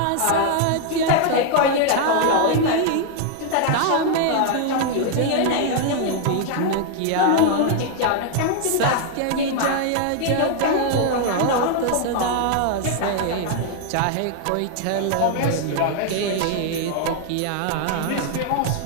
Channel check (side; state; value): both; different; correlation 0.00